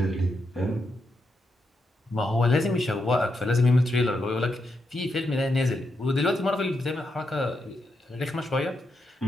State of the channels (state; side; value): normal; both; correlation 0.83